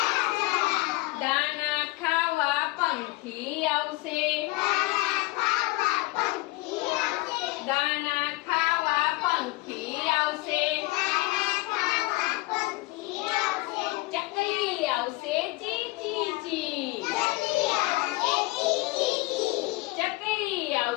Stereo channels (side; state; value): right; quieter; 21.6 dB